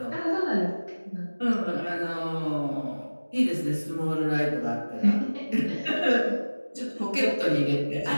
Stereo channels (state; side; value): inverted; both; correlation -1.00